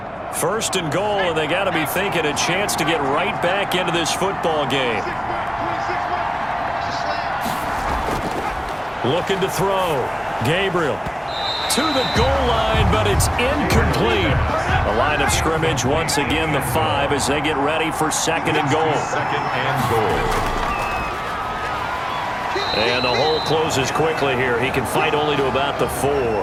First and goal, and they got to be thinking a chance to get right back into this football game. Looking to throw. Gabriel to the goal line, but it's incomplete. The line of scrimmage, once again, the 5 as they get ready for 2nd and goal. 2nd and goal. And the hole closes quickly here. He can fight only to about the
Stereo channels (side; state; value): both; identical; correlation 1.00